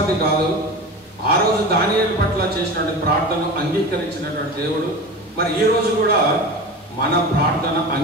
కాదు. ఆ రోజు దానియేలు పట్ల చేసినటువంటి ప్రార్థనను అంగీకరించినటువంటి దేవుడు మరి ఈ రోజు కూడా మన ప్రార్థన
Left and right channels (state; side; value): normal; both; correlation 0.31